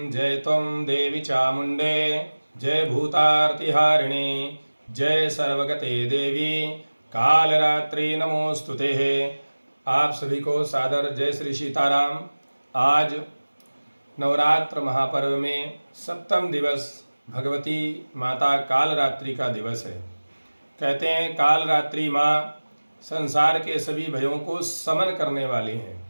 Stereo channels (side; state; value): both; inverted; correlation -1.00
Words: जय त्वं देवी चामुण्डे जय भूतार्तिहारिणी जय सर्वगते देवी कालरात्रि नमोस्तुते। आप सभी को सादर जय श्री सीताराम। आज नवरात्र महापर्व में सप्तम दिवस भगवती माता कालरात्रि का दिवस है। कहते हैं कालरात्रि माँ संसार के सभी भयों को समन करने वाली हैं।